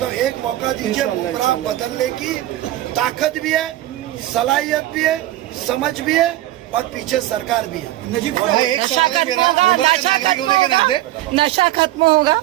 हूं, एक मौका दीजिए। गुमराह बदलने की ताकत भी है, सलाहियत भी है, समझ भी है, और पीछे सरकार भी है। नजीब भाई, एक सवाल है मेरा, मुमरा के नागरिक होने के नाते, नशा खत्म होगा?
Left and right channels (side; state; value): left; quieter; 15.1 dB